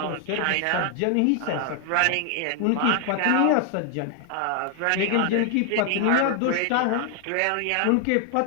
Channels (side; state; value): both; different; correlation 0.00